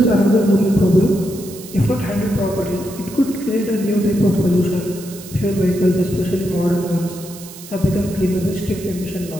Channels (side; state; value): right; noise; hiss, 16 dB below the sound